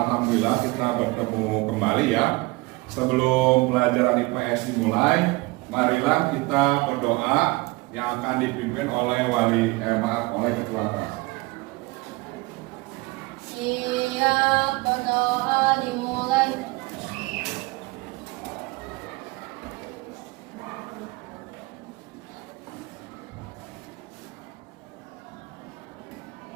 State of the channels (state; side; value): quieter; left; 23.5 dB